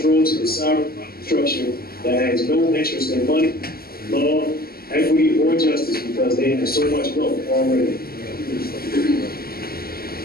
to the sovereign structure that has no interest in money, law, equity, or justice because they have so much wealth already.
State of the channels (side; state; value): right; late; 0.44 ms